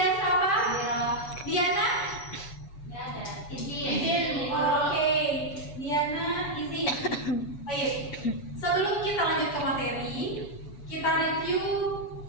Safa. Hadir. Diana. Nggak ada. Izin. Oke, Diana izin. Baik. Sebelum kita lanjut ke materi, kita review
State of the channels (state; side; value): late; right; 7.0 ms